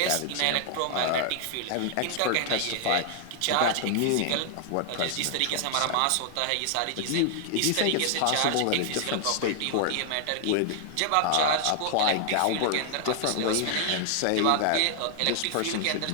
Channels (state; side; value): different; both; correlation 0.00